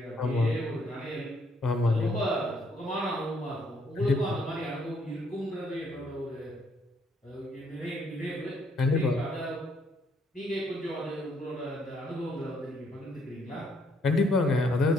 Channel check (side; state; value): both; normal; correlation 0.69